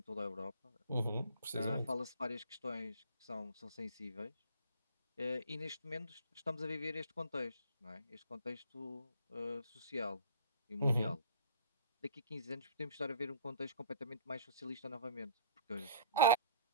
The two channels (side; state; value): both; inverted; correlation -0.47